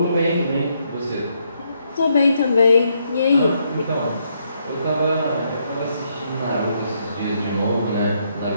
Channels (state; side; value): inverted; both; correlation -0.76